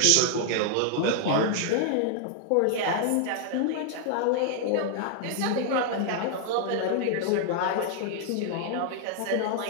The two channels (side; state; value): both; different; correlation 0.00